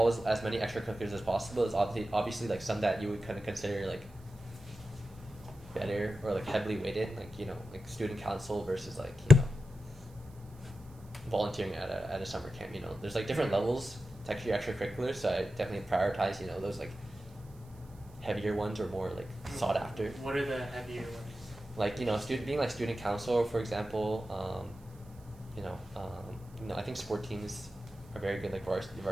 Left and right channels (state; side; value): noise; right; hiss, 28 dB below the sound